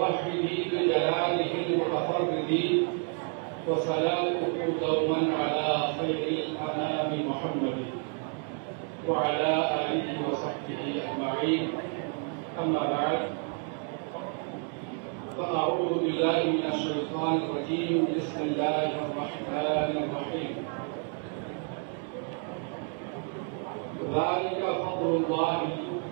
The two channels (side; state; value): left; quieter; 39.6 dB